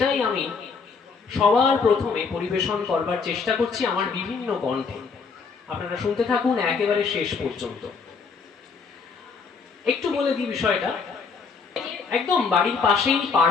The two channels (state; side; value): quieter; right; 5.2 dB